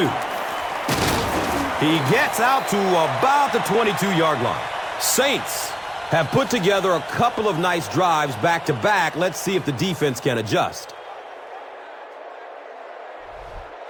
He gets out to about the 22-yard line. Saints have put together a couple of nice drives back-to-back. Let's see if the defense can adjust.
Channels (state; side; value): identical; both; correlation 1.00